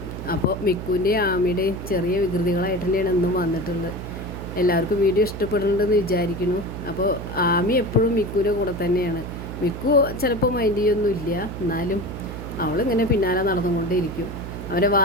അപ്പോൾ മിക്കുവിൻ്റെയും ആമിയുടെയും ചെറിയ വികൃതികളായിട്ട് തന്നെയാണ് എന്നും വന്നിട്ടുള്ളത്. എല്ലാവർക്കും വീഡിയോ ഇഷ്ടപ്പെടുന്നുണ്ടെന്ന് വിചാരിക്കുന്നു. അപ്പോൾ ആമി എപ്പോഴും മിക്കുവിൻ്റെ കൂടെ തന്നെയാണ്. മിക്കു ചിലപ്പോൾ മൈൻഡ് ചെയ്യൊന്നുമില്ല, എന്നാലും അവളിങ്ങനെ പിന്നാലെ നടന്നുകൊണ്ടേയിരിക്കും. അവൻ്റെ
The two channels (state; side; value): noise; right; hum, 8 dB below the sound